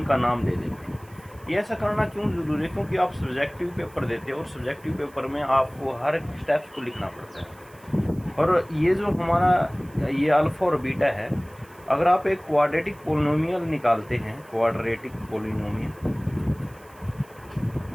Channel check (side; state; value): right; noise; hiss, 27 dB below the sound